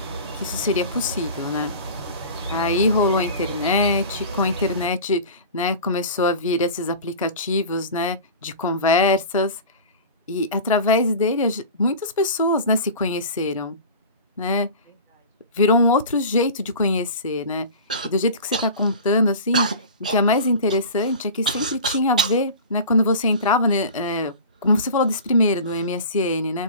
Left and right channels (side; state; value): both; inverted; correlation -0.35